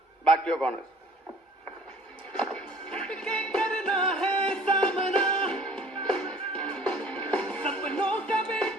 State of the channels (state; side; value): normal; both; correlation 0.52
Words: back to your corners.